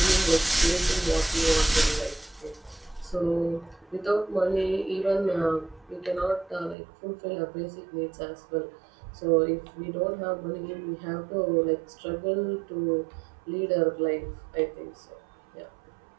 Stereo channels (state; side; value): drops out; left; at 6.8 s